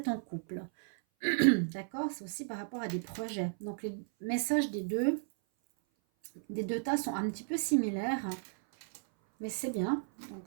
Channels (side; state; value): left; silent; 55 dB below the other